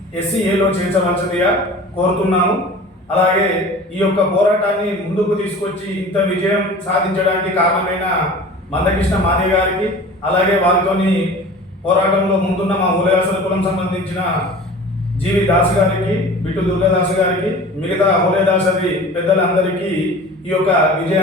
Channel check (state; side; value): normal; both; correlation 0.40